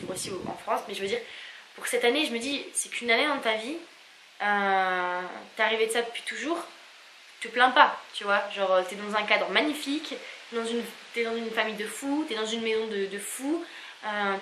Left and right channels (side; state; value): both; identical; correlation 1.00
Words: aussi en France. Mais je veux dire, pour cette année, je me dis, c'est qu'une année dans ta vie, t'es arrivé de ça depuis toujours, te plains pas, tu vois. Genre, t'es dans un cadre magnifique, t'es dans une famille de fous, t'es dans une maison de fous,